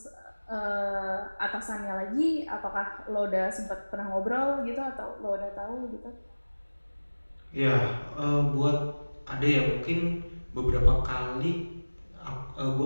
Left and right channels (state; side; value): inverted; both; correlation -1.00